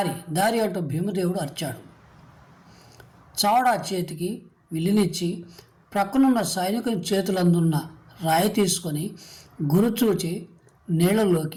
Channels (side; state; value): both; identical; correlation 1.00